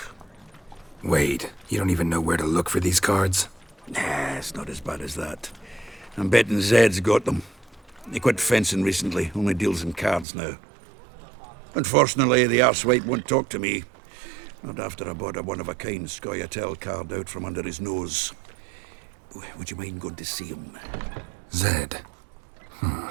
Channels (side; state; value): left; drops out; at 10.2 s